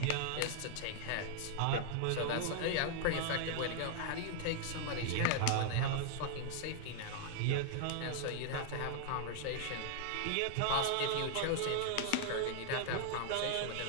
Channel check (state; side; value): different; both; correlation 0.00